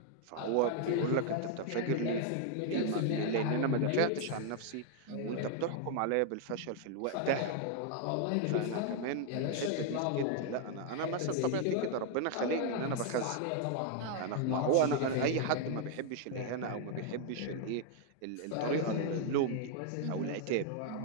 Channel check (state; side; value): different; both; correlation 0.00